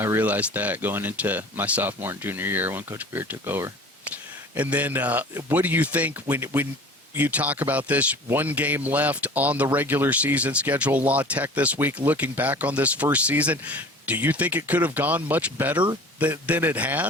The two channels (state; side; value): normal; both; correlation 0.42